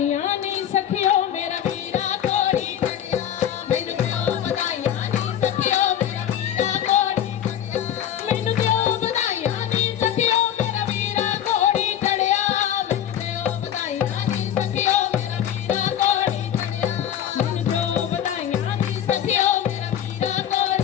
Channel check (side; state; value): right; quieter; 10.2 dB